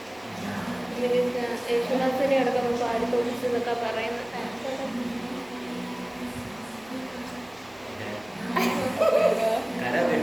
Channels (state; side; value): noise; right; rumble, 29 dB below the sound